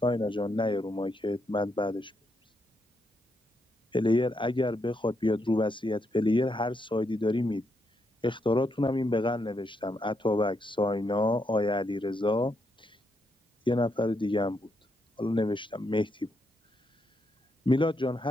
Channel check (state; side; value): normal; both; correlation 0.80